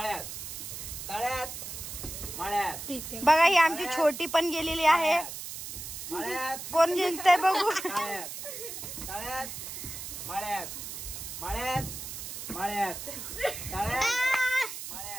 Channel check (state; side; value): noise; right; hiss, 8 dB below the sound